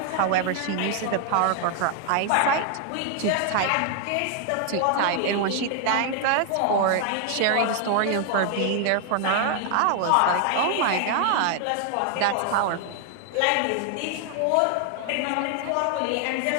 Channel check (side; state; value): both; different; correlation 0.00